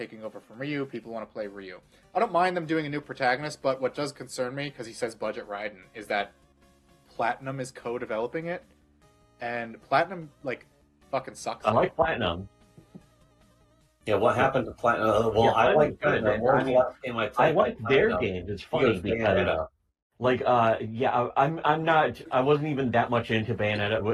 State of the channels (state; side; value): identical; both; correlation 1.00